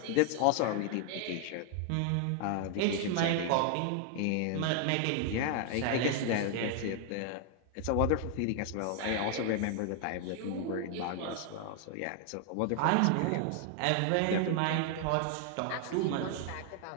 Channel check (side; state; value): both; different; correlation 0.00